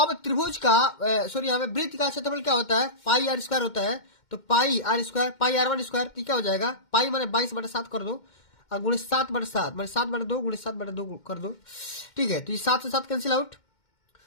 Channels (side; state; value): right; late; 2.1 ms